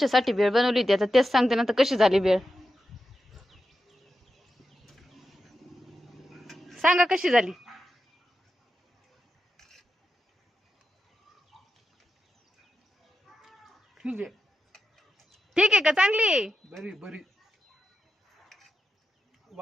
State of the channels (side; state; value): both; normal; correlation 0.89